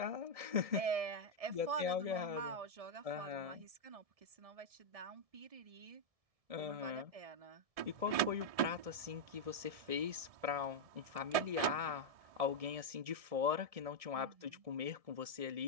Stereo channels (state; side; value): late; left; 1.7 ms